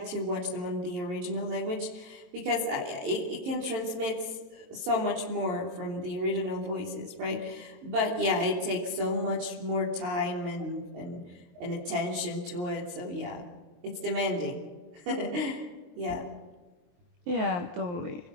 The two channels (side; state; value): left; late; 22 ms